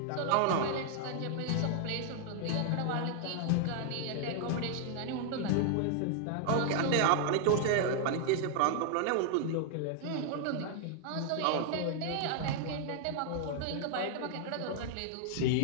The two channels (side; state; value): both; different; correlation 0.00